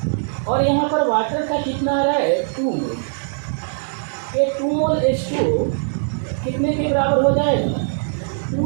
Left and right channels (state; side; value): silent; left; digital silence